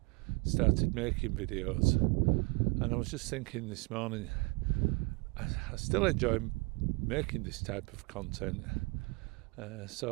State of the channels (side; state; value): left; quieter; 28.1 dB